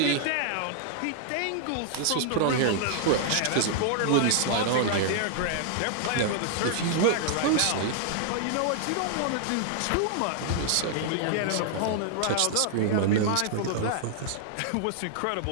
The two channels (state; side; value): different; both; correlation -0.01